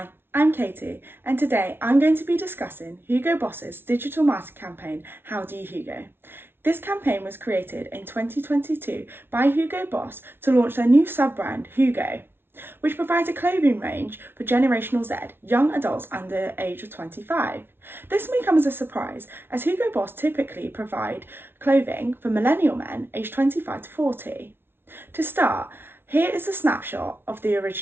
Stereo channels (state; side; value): late; left; 0.11 ms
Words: I'm Katie, and today I'm going to be discussing Hugo Boss's digital marketing campaign, How Do You Hugo? This campaign was created in 2022 by Hugo Boss to launch their new sub-brand, Hugo, which provides a clothing range for Generational Z, young adults under the age of 25. This may come as a surprise, as Hugo Boss typically provide clothing for millennial men aged 25 to 40. To start, here is a snapshot of the